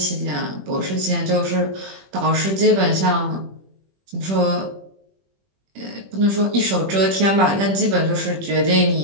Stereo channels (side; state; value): left; late; 21 ms